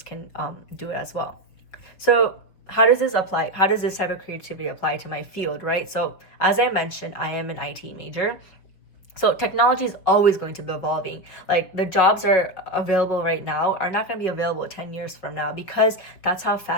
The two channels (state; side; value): late; right; 5.2 ms